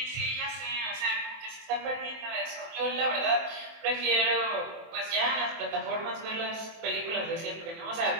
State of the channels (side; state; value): left; late; 24 ms